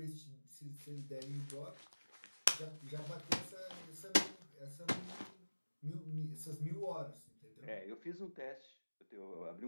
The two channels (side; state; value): both; inverted; correlation -1.00